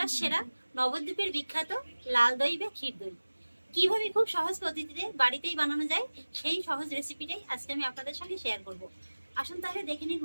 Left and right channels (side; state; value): both; inverted; correlation -1.00